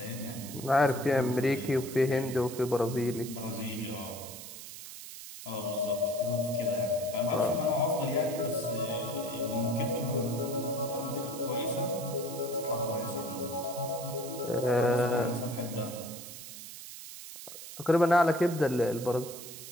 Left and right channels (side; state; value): right; noise; hiss, 12 dB below the sound